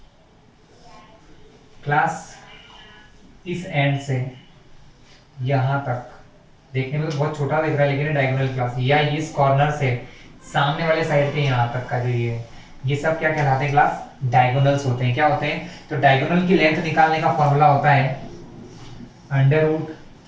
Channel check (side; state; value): both; identical; correlation 1.00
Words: क्लास इस एंड से यहां तक देखने में तो बहुत छोटा दिख रहा है, लेकिन डायगोनल क्लास, या इस कॉर्नर से सामने वाले साइड के यहां तक का जो ये सब क्या कहलाते हैं क्लास डायगोनल्स होते हैं। क्या होते हैं, तो डायगोनल की लेंथ निकालने का फॉर्मूला होता है under root